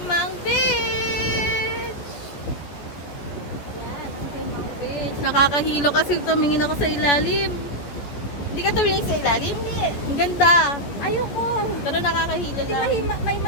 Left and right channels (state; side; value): late; right; 14 ms